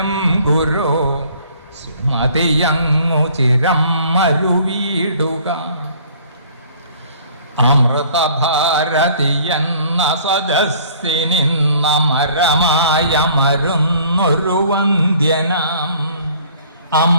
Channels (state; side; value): inverted; both; correlation -0.55